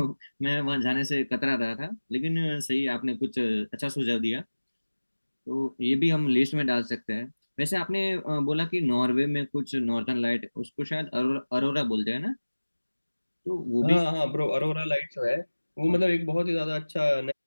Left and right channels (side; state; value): both; inverted; correlation -1.00